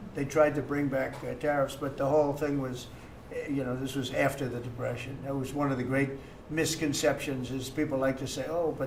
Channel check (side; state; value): both; identical; correlation 1.00